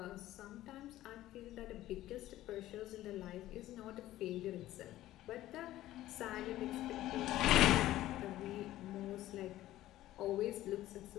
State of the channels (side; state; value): right; quieter; 14.8 dB